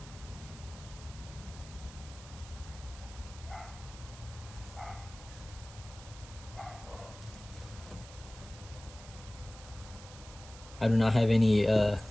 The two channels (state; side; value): noise; right; hiss, 17 dB below the sound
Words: I do not have anything